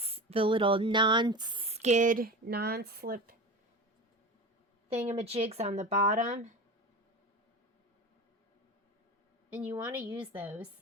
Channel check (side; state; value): both; normal; correlation 0.29